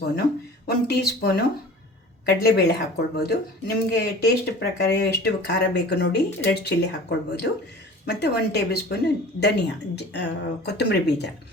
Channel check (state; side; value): normal; both; correlation 0.42